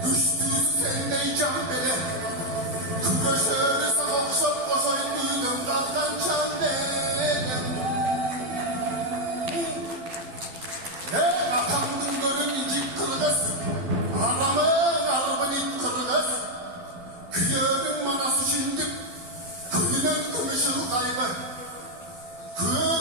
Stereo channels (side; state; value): left; late; 11 ms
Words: üstüsü sendey can bele, küreşeri savaşıp koşay duydum katlan can bele. Atandın gölün incik kırgız, aramın arbın it kırgız, kıyörün manası şindik, kıyının kımışır kaybı, kıyır